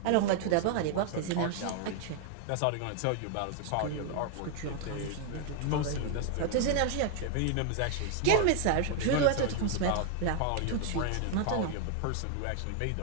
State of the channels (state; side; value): different; both; correlation 0.00